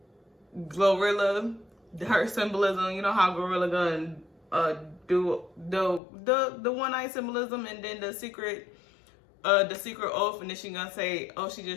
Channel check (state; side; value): drops out; right; at 6.0 s